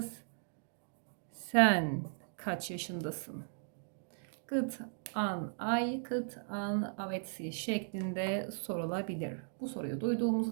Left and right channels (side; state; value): left; silent; digital silence